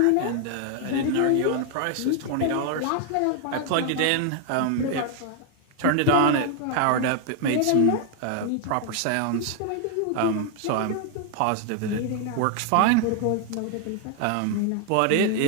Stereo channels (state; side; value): different; both; correlation 0.00